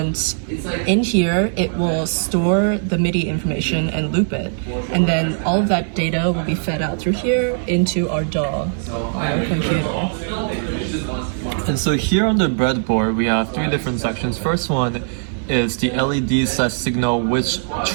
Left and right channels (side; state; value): left; silent; digital silence